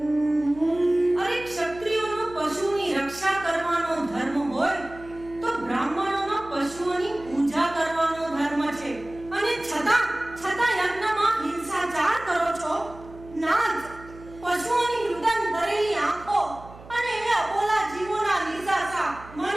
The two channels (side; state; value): right; noise; hum, 19 dB below the sound